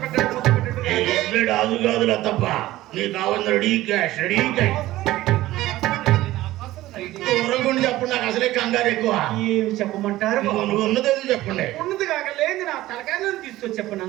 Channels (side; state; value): left; quieter; 16.2 dB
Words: పెట్టాడు. ఆదు కాదులా తప్ప నీకు కావాలి రెడీ క్యాష్, రెడీ క్యాష్. దూరంగా చెప్పండి, నాకు అసలే కంగారు ఎక్కువ. ఏమి చెప్పమంటారు? ఉన్నది చెప్పండి. ఉన్నది కాక లేదు నా తలకాయలను తీసుకొచ్చి చెప్పను.